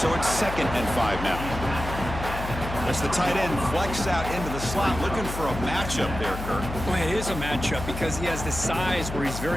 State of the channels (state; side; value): noise; left; hum, 7 dB below the sound